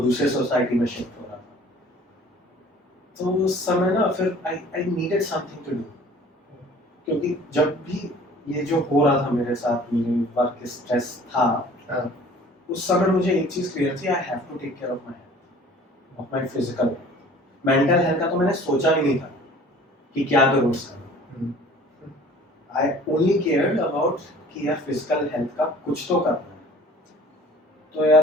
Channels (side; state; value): both; normal; correlation 0.49